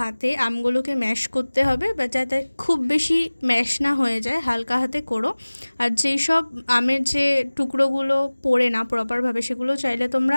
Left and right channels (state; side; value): inverted; both; correlation -1.00